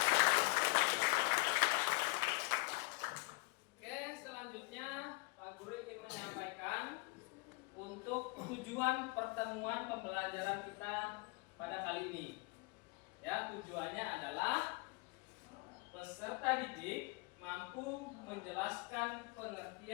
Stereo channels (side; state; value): right; quieter; 26.9 dB